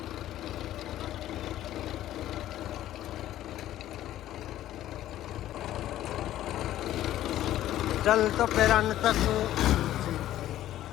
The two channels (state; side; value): quieter; right; 13.2 dB